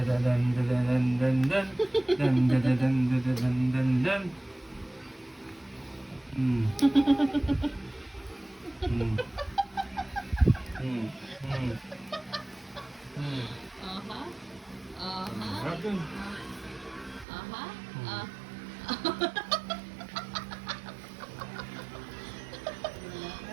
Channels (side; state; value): left; drops out; at 17.2 s